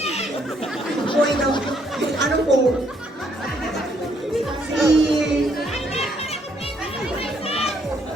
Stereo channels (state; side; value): normal; both; correlation 0.70